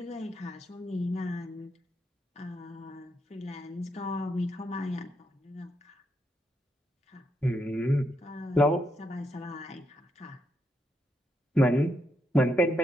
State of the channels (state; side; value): normal; both; correlation 0.80